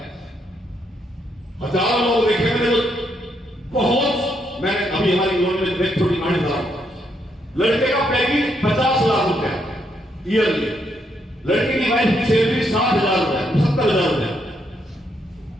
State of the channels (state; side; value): normal; both; correlation 0.76